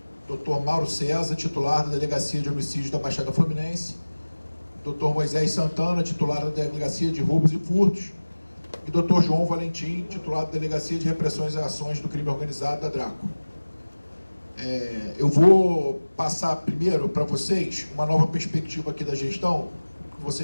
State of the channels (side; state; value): both; inverted; correlation -1.00